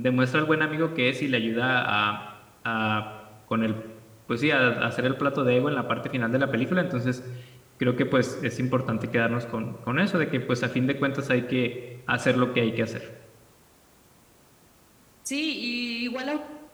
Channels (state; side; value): identical; both; correlation 1.00